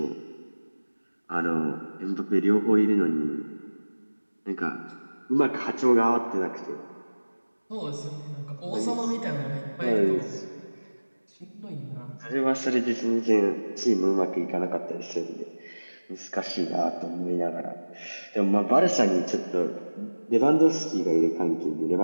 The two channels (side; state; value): both; inverted; correlation -1.00